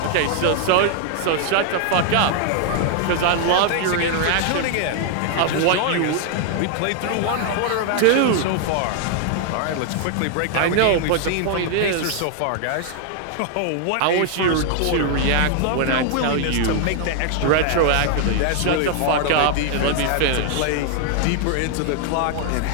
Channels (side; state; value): both; different; correlation 0.00